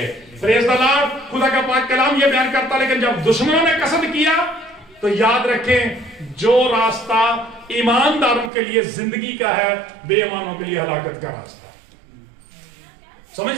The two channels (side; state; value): left; drops out; at 8.5 s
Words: Praise the Lord. खुदा का पाक कलाम ये बयान करता, लेकिन जब दुश्मनों ने कसद किया तो याद रखें, जो रास्ता ईमानदारों के लिए जिंदगी का है, बेईमानों के लिए हलाकत का रास्ता।